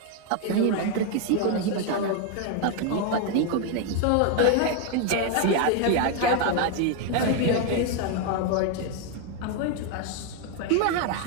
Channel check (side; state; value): both; different; correlation 0.01